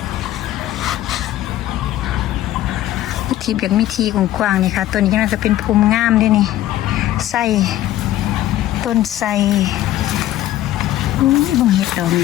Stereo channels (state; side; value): quieter; right; 13.8 dB